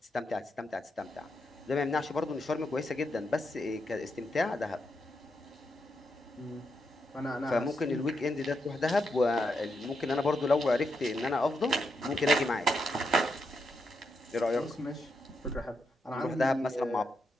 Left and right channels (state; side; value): normal; both; correlation 0.82